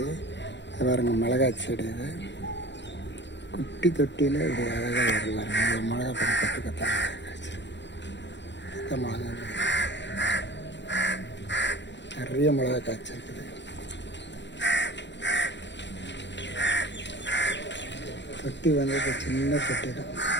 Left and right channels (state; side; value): late; right; 0.52 ms